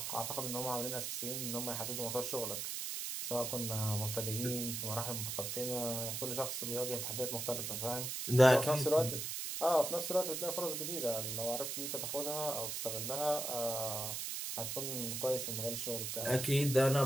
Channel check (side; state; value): right; noise; hiss, 3 dB below the sound